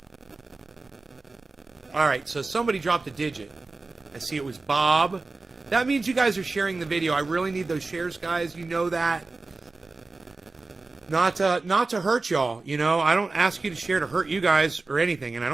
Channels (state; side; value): quieter; left; 3.6 dB